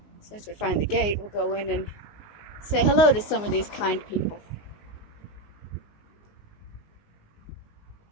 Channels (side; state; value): right; late; 19 ms